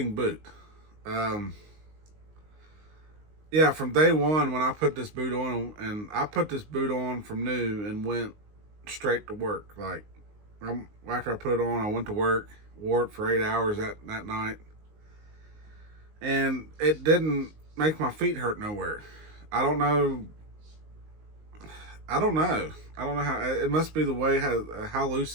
boot. Yeah, from day one when I put this boot on, and I put this boot on from new and went straight to work. Like, after I put it on, I went to work, wore it for 8 hours that night, and it didn't make my feet hurt nowhere. I don't know. I don't know. I don't know how. It must be the way how loose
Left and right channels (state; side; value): late; left; 19 ms